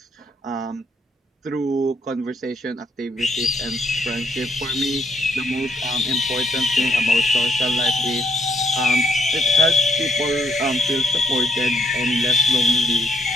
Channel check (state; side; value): normal; both; correlation 0.71